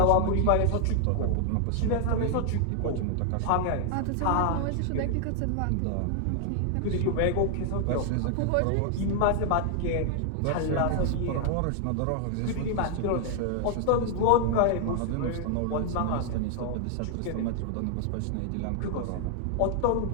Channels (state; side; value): different; both; correlation 0.00